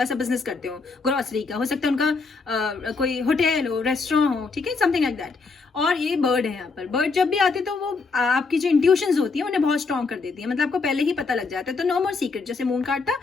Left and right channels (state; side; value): quieter; right; 4.3 dB